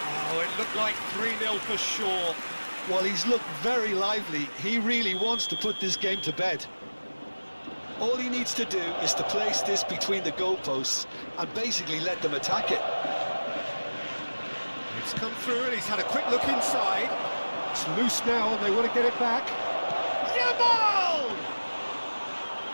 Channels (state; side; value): inverted; both; correlation -1.00